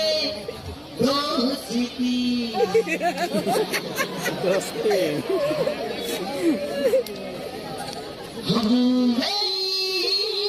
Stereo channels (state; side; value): identical; both; correlation 1.00